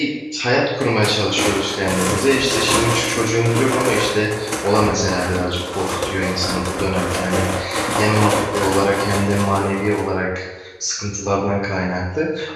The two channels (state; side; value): identical; both; correlation 1.00